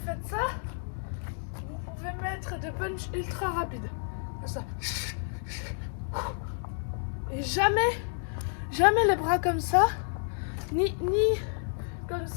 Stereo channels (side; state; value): right; silent; 58 dB below the other